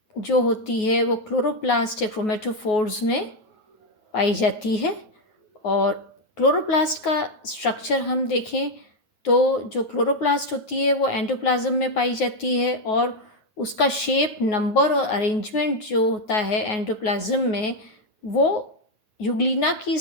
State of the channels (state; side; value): late; right; 9.4 ms